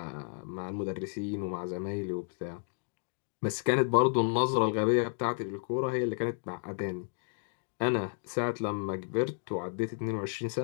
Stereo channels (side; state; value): right; silent; 56 dB below the other